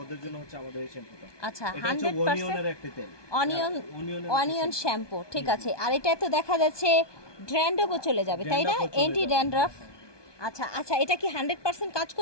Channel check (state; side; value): late; right; 1.2 ms